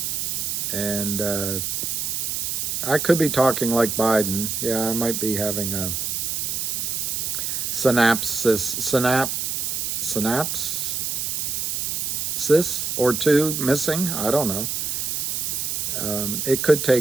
And I could be talking like Biden. Yeah, I might be having a synapses or two missing. I don't know. It could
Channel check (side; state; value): right; noise; hiss, 1 dB below the sound